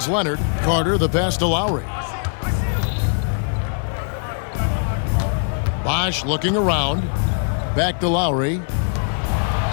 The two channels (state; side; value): silent; right; 56 dB below the other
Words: Leonard. Carter the pass to Lowry. Bosh looking around. Back to Lowry.